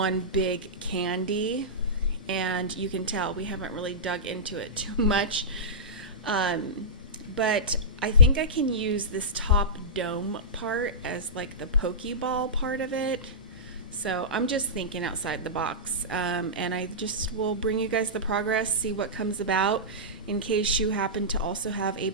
big candy, and you can tell we haven't really dug into it too much. But I think I can use this top dome part as like the Pokeball part of it. So I'm just thinking outside the box, and I just will bring you guys the progress, see what comes about in case you happen to also have a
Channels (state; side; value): normal; both; correlation -0.16